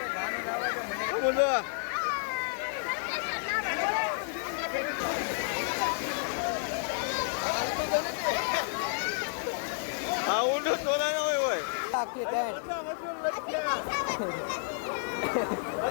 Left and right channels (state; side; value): silent; right; digital silence